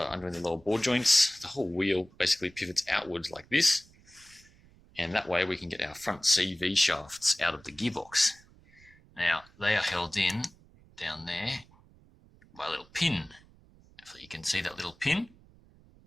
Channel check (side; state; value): right; noise; rumble, 27 dB below the sound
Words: undoing the lower ball joints, the whole wheel basically pivots outwards like this, and that way we can get our front CV shafts out of the gearbox. Now they are held in down there by a little pin. If you can see that little pin,